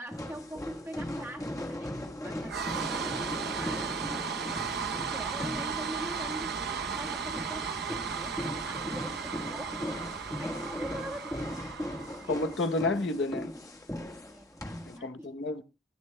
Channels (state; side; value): normal; both; correlation 0.45